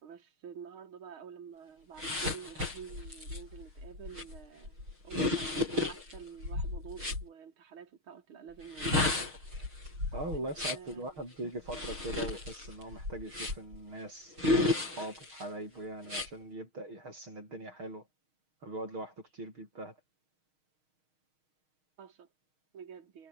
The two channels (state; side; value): late; left; 6.4 ms